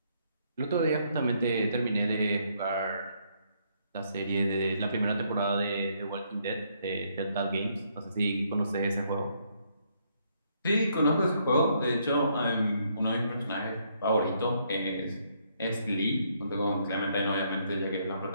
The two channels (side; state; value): both; inverted; correlation -0.71